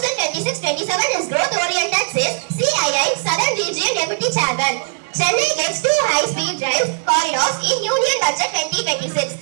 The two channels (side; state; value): left; silent; 67 dB below the other